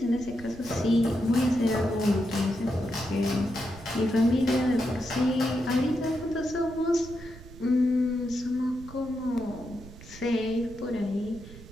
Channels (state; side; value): noise; right; rumble, 17 dB below the sound